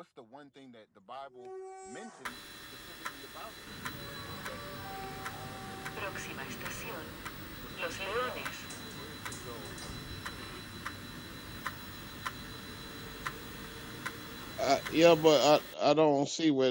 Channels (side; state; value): both; identical; correlation 1.00